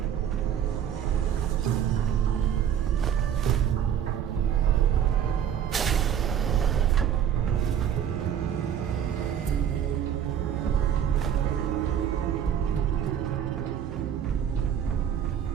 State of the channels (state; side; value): quieter; left; 9.1 dB